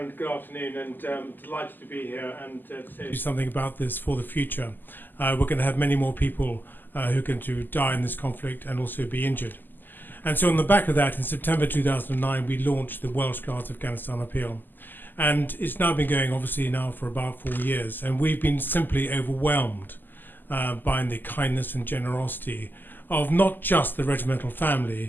good afternoon, and delighted to be here and to say something about this for the future. We're going to have many more people who are going to die in this conflict and also be injured. And so on the back of that, in September 2009, we launched the Welsh Guards Afghanistan Appeal. And it's now been going, obviously, now for about 4 years. And we've been simply overwhelmed by the kindness and generosity of not just the regimental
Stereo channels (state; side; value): late; right; 0.089 ms